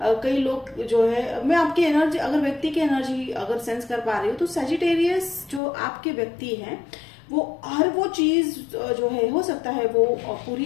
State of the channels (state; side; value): drops out; right; at 5.6 s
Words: कई लोग जो है, मैं आपकी एनर्जी, अगर व्यक्ति की एनर्जी अगर सेंस कर पा रही हूँ तो सैजिटेरियस जो आपके व्यक्ति हैं वो हर वो चीज जो है हो सकता है वो